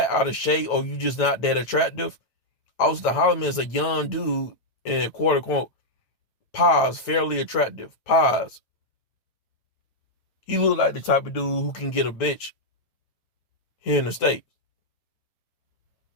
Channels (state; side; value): late; right; 8.9 ms